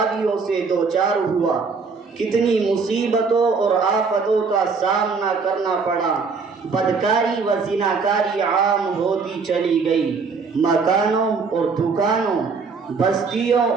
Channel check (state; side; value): quieter; left; 4.9 dB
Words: سے دوچار ہوا، کتنی مصیبتوں اور آفتوں کا سامنا کرنا پڑا۔ بدکاری و زناکاری عام ہوتی چلی گئی، مکانوں اور دکانوں، بستیوں